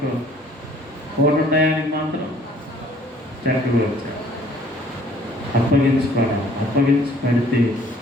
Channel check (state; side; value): normal; both; correlation 0.57